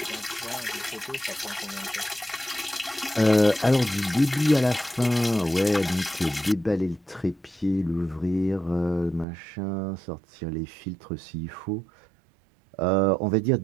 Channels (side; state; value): left; drops out; at 9.2 s